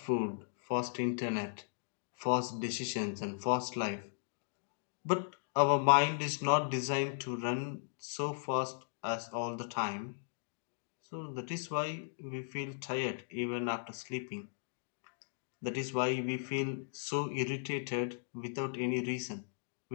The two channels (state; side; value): silent; right; digital silence